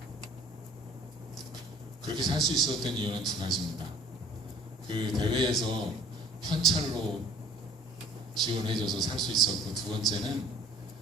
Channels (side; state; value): both; normal; correlation 0.51